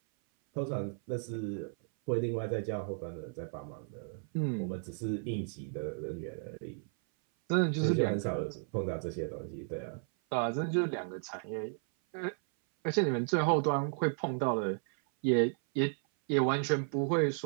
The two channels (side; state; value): left; silent; 55 dB below the other